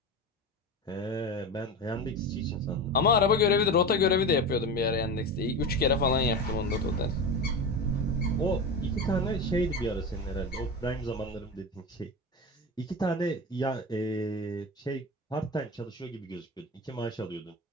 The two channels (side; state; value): both; normal; correlation 0.24